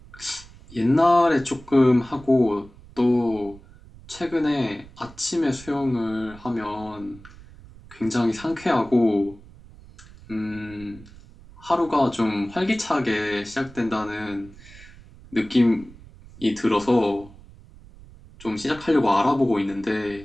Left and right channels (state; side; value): noise; right; rumble, 21 dB below the sound